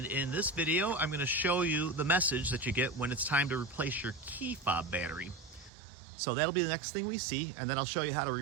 in this video I'm going to show you the message that you get when it's time to replace your key fob battery. So that'll be the next thing we see, and then I'll show you how to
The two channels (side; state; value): left; drops out; at 5.7 s